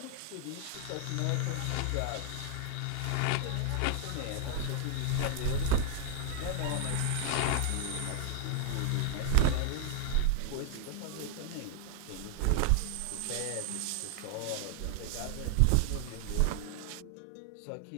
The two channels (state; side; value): different; both; correlation 0.00